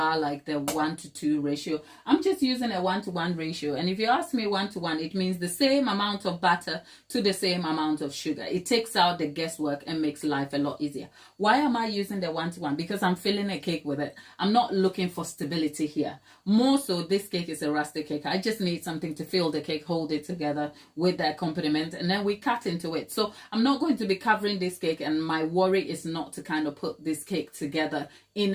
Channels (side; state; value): both; identical; correlation 1.00